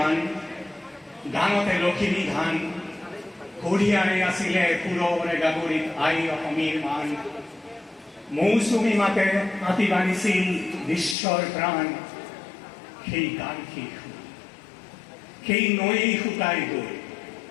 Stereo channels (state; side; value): drops out; right; at 11.2 s